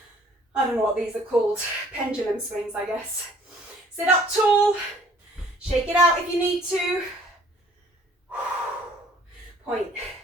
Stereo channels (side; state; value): both; normal; correlation 0.57